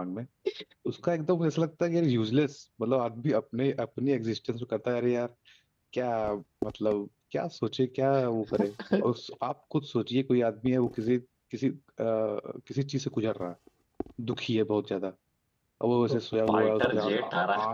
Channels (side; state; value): both; identical; correlation 1.00